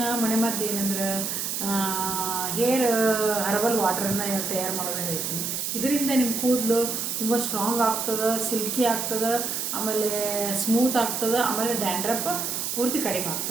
ಮನೆಮದ್ದು ಏನಂದ್ರೆ ಹೇರ್ ಹರ್ಬಲ್ ವಾಟರನ್ನು ತಯಾರು ಮಾಡೋದನ್ನು ಹೇಳ್ತೀನಿ. ಇದರಿಂದ ನಿಮ್ಮ ಕೂದಲು ತುಂಬ ಸ್ಟ್ರಾಂಗ್ ಆಗ್ತದೆ, ಸಿಲ್ಕಿ ಆಗ್ತದೆ, ಆಮೇಲೆ ಸ್ಮೂತ್ ಆಗ್ತದೆ, ಆಮೇಲೆ ಡ್ಯಾಂಡ್ರಫ್ ಪೂರ್ತಿ ಕಡಿಮೆ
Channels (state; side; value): noise; right; hiss, 2 dB below the sound